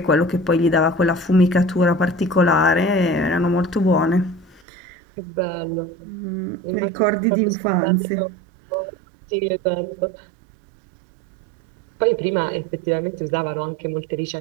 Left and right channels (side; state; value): left; drops out; at 4.6 s